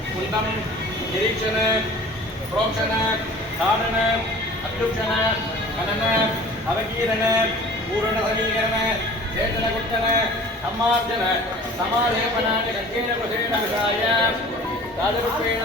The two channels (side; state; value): both; normal; correlation 0.44